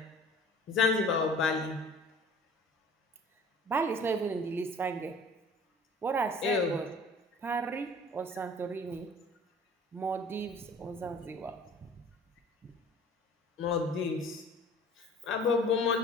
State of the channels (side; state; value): both; normal; correlation 0.47